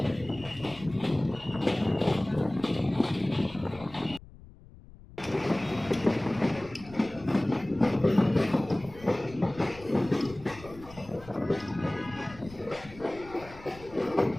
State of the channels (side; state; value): left; noise; rumble, 19 dB below the sound